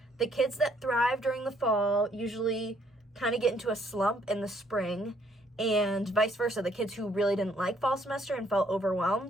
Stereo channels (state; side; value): normal; both; correlation 0.66